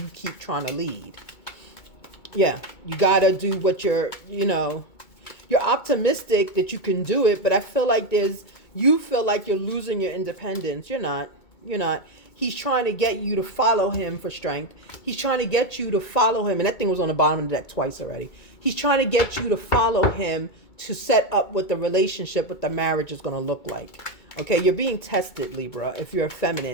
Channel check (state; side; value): late; right; 2.2 ms